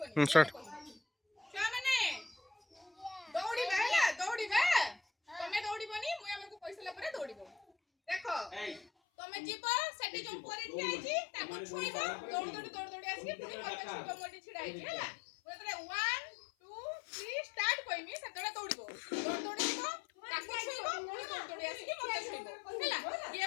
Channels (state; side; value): drops out; right; at 8.8 s